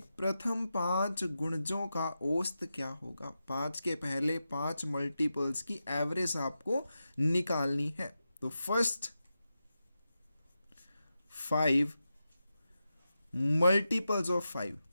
प्रथम 5 गुणजों का औसत क्या होगा। 5 के पहले 5 मल्टीपल्स की एवरेज आपको निकालनी है। तो फर्स्ट 5 मल्टीपल्स ऑफ 5,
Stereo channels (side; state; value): both; inverted; correlation -0.90